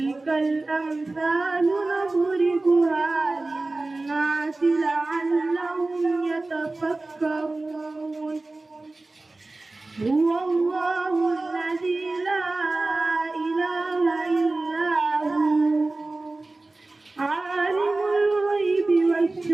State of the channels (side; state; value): left; quieter; 3.1 dB